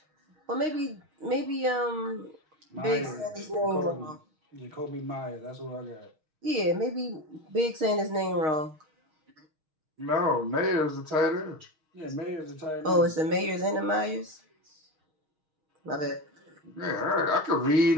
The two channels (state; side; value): late; left; 6.4 ms